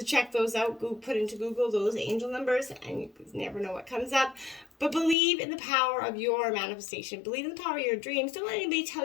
check those out. Go put into Google those angel numbers, and you never know what comes up. But believe in the power of your manifestation. Believe in the power of your dreams. Don't let anybody tell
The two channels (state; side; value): drops out; right; at 5.2 s